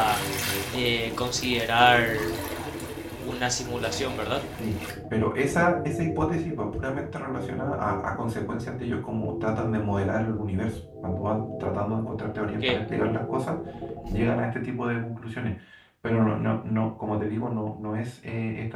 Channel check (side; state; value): both; identical; correlation 1.00